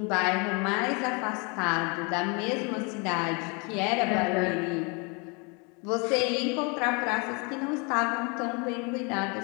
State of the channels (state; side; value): quieter; right; 31.8 dB